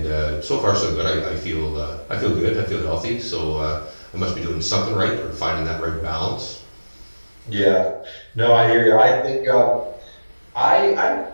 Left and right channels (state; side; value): inverted; both; correlation -1.00